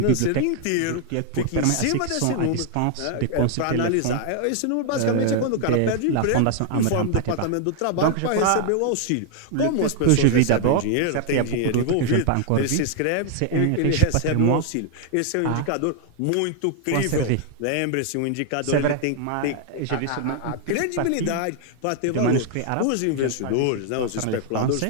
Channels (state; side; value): different; both; correlation 0.00